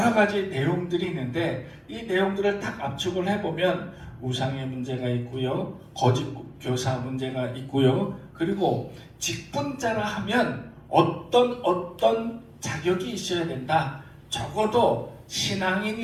가지 내용들이 있는데 이 내용들을 딱 압축을 해보면 우상의 문제가 있고요, 거짓 교사 문제가 있고요, 그리고 직분자라 하면 어떤 자격이 있어야 된다. 적어도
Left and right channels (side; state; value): both; identical; correlation 1.00